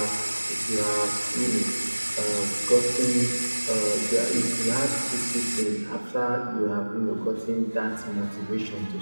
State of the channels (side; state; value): both; inverted; correlation -1.00